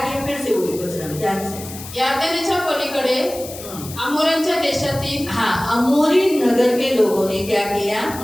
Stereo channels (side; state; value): left; noise; hiss, 13 dB below the sound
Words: फिर से वही वचन में ध्यान से। यार्देनेच्या पलीकडे अमोरेंच्या देशातील अमोरी नगर के लोगों ने क्या किया?